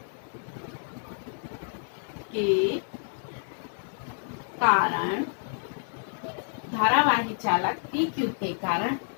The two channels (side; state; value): right; silent; digital silence